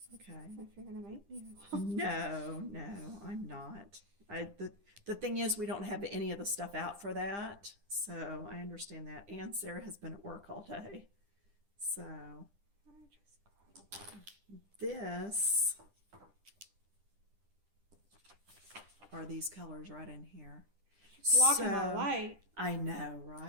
Okay. If you're gonna make me. No, I'm not. The thing is, we don't have any of the stuff out for that, so I understand that. And Sarah has been at work all day, so I just got this are these colors right in here. blocking So, my light. I know,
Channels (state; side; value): late; left; 10 ms